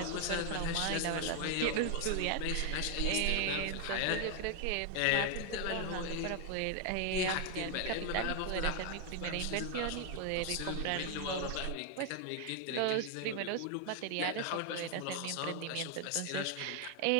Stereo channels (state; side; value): different; both; correlation 0.00